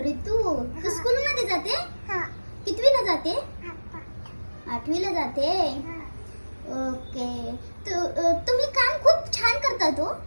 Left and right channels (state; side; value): inverted; both; correlation -1.00